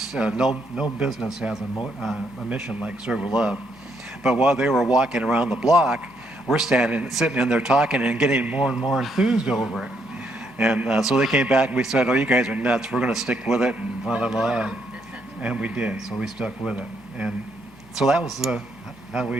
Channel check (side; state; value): both; normal; correlation 0.74